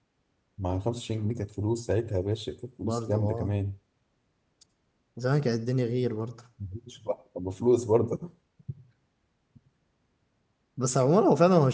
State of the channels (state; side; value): identical; both; correlation 1.00